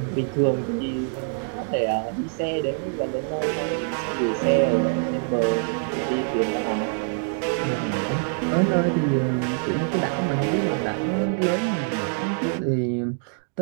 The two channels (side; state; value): left; silent; 58 dB below the other